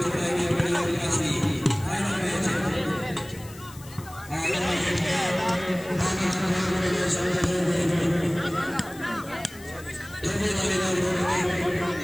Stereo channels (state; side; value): noise; left; hiss, 19 dB below the sound